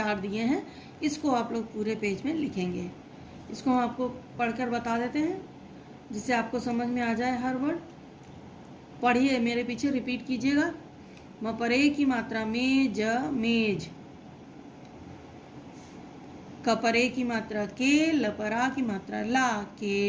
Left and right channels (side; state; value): both; identical; correlation 1.00